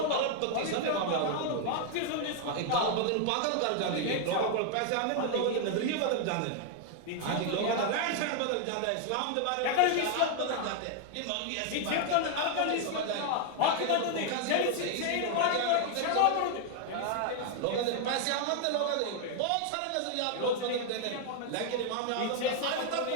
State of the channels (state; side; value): different; both; correlation 0.00